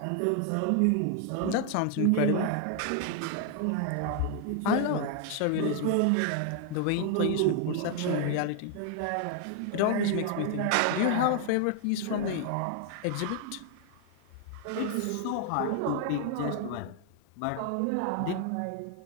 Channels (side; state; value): both; different; correlation 0.00